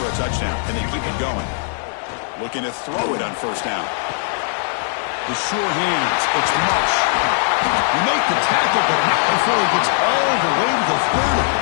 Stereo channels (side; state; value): right; silent; 66 dB below the other